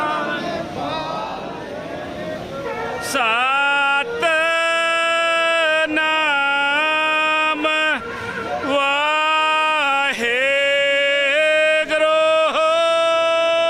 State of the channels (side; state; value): both; identical; correlation 1.00